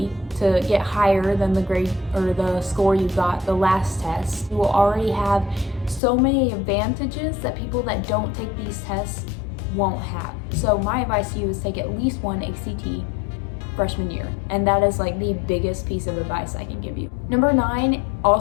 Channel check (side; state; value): right; drops out; at 6.0 s